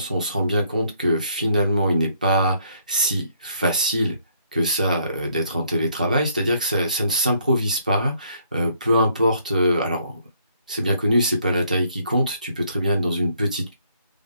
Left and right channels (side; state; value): both; inverted; correlation -0.68